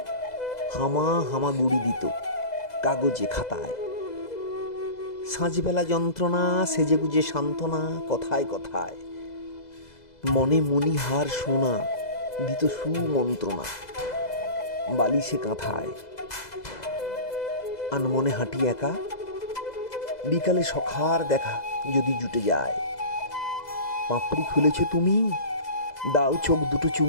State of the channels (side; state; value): right; late; 2.0 ms